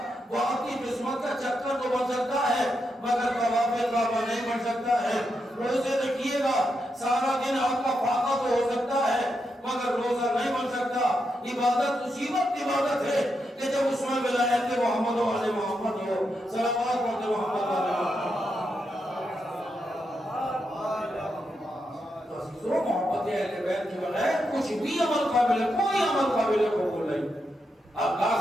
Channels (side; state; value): both; normal; correlation 0.84